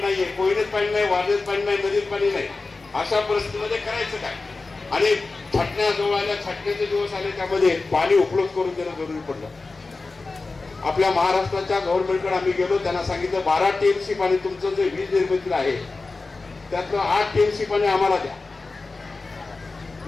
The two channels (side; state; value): right; quieter; 3.7 dB